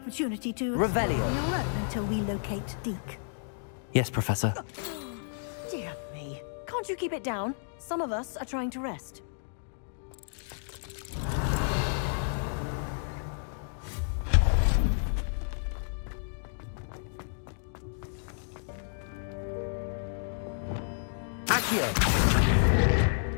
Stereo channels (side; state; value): right; silent; digital silence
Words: to explore on your own until we locate Deke. Yes, Professor. Dear me. Can't you keep it down? Some of us are trying to rest. Accio!